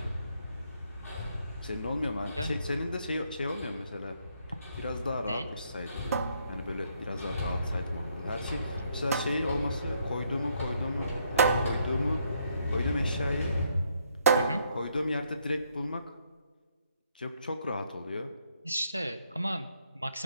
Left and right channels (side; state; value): both; inverted; correlation -0.72